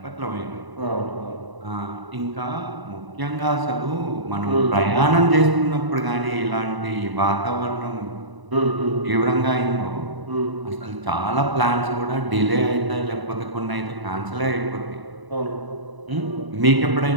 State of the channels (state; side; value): late; left; 1.0 ms